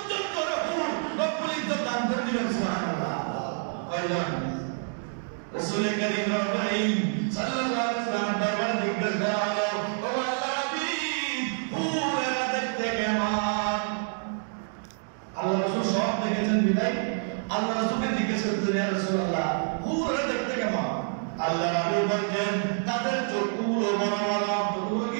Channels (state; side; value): silent; left; 60 dB below the other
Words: জন করে হুর রব্বুল ইজ্জত দান করে দিবেন। সুবহানাল্লাহ। কয়জন? রাসূল করিম সাল্লাল্লাহু আলাইহি ওয়াসাল্লাম দরবারে জিজ্ঞেস করা হলো, ও আল্লাহর হাবিব, হুরেরা দেখতে কেমন? আল্লাহ রাসূল সব দেখেছেন বিদায় আল্লাহ রাসূলকে জিজ্ঞেস করতেন, ইয়া রাসূলুল্লাহ হুরেরা দেখতে কেমন? আল্লাহ রাসূল বলেন তাদের চোখগুলো বড় বড়। চোখগুলো